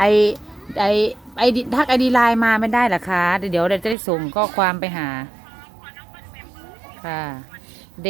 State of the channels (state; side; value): drops out; left; at 4.0 s